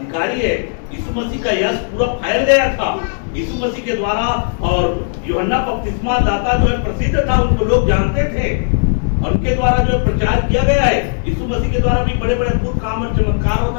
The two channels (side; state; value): right; silent; digital silence